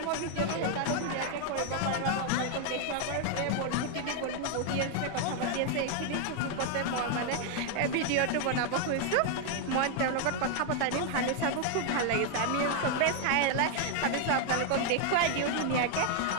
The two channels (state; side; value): different; both; correlation 0.01